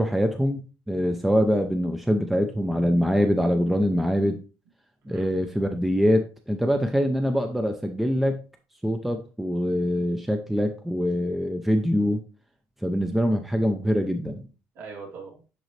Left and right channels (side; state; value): both; normal; correlation 0.94